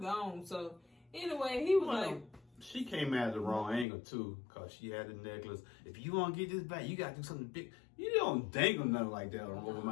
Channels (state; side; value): drops out; right; at 3.9 s